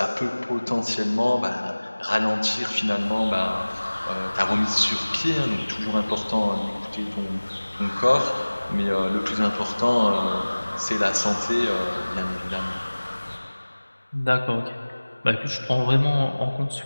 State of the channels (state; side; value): inverted; both; correlation -1.00